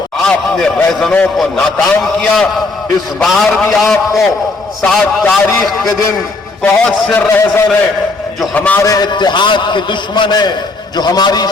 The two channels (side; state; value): right; quieter; 3.4 dB